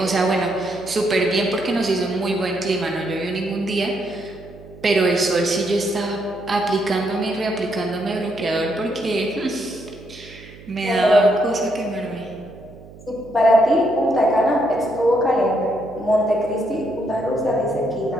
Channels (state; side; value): noise; right; hum, 19 dB below the sound